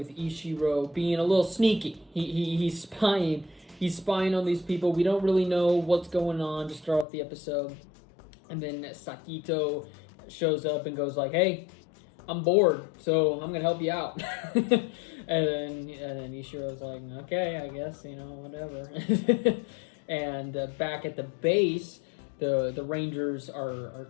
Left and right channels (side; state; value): right; drops out; at 7.1 s